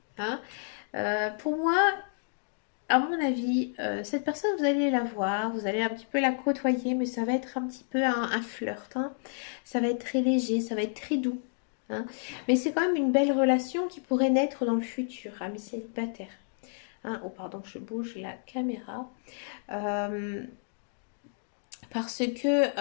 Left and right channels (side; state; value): right; silent; digital silence